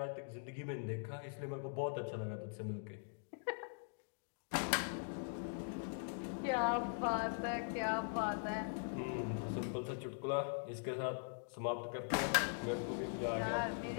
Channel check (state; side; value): silent; right; digital silence